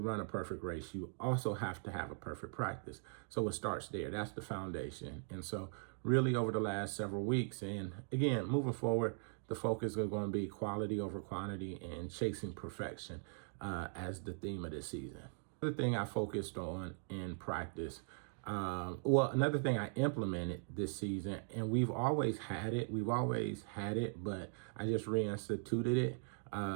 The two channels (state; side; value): silent; left; 51 dB below the other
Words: a perfect race, you also have to have a perfect practice. So it starts there. That's the foundation. And so really over the last several weeks, and again, moving forward, the focus is going to be quality over quantity and chasing perfection as the theme of this season. Another thing I focused on in practice, another thing I implemented this season, and we've always had it, but I just reinstituted it,